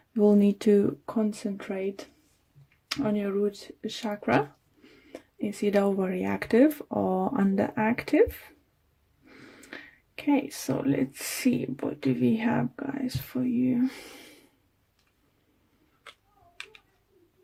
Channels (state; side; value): identical; both; correlation 1.00